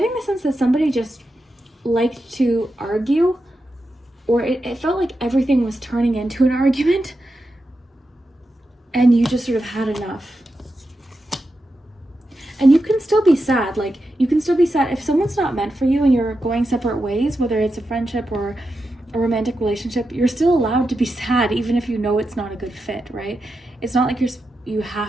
the sense that somebody just liked to argue, or it felt like everything was turning into an argument, and you just sort of had enough. And you can still be sad. Like, you can still be sad if someone's not meant for you and you're going separate ways, whether it's a friendship or a romantic relationship, you're still allowed to be sad, even if you know it's not a good fit, right? It's not like you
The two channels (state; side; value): normal; both; correlation 0.88